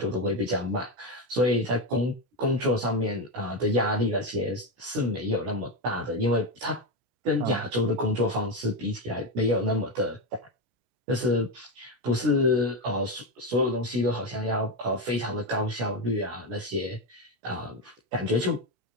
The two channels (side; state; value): left; late; 16 ms